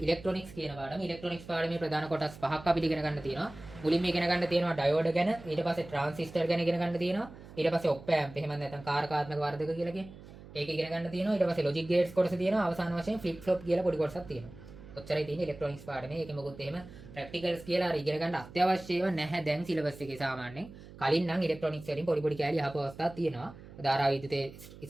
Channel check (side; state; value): right; noise; hum, 17 dB below the sound